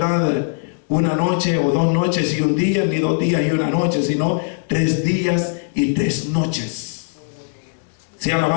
1 noche o 2 noches y 1 día, ni 2 días y 1 noche, sino 3 días y 3 noches. Sea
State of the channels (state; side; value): silent; right; digital silence